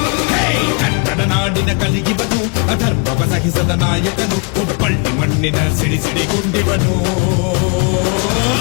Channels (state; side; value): quieter; right; 34.0 dB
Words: ಕನ್ನಡ ನಾಡಿನ ಕಲಿಗಿವನು ಅಧರ್ಮವ ಸಹಿಸದ ನಾಯಕನು ಹುಬ್ಬಳ್ಳಿ ಮಣ್ಣಿನ ಸಿಡಿ ಗುಂಡಿವನು